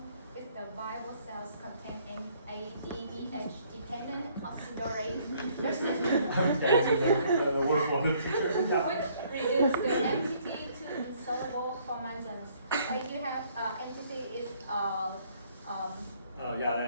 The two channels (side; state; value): both; inverted; correlation -0.63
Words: is the viable cells contain an ADDH dependent oxidorate Thank you, the word for the teacher. which reduce the MTT to insoluble formations. Like you have MTT is